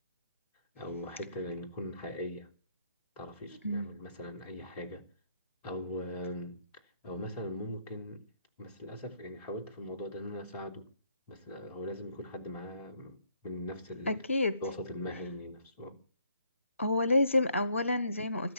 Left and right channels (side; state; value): both; inverted; correlation -0.69